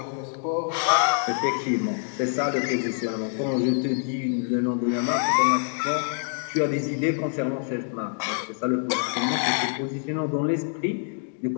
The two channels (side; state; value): right; silent; 61 dB below the other